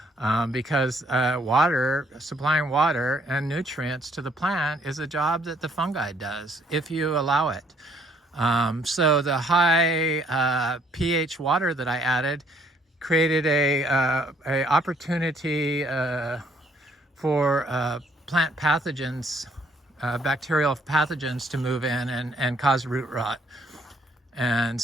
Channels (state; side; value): normal; both; correlation 0.66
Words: because supplying water and nutrients to the plant is a job that the fungi does if you allow it. So the high pH water that I added created a opportunity for plant pathogens, bacterial pathogens to move in and cause root rot. And